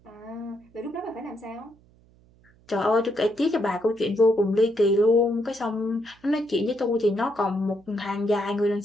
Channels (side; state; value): right; noise; hum, 30 dB below the sound